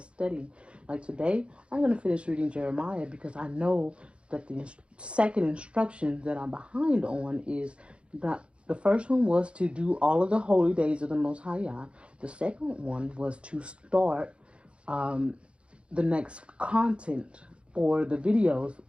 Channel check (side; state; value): left; late; 0.059 ms